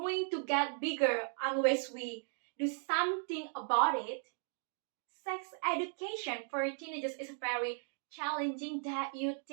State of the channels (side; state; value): left; silent; 53 dB below the other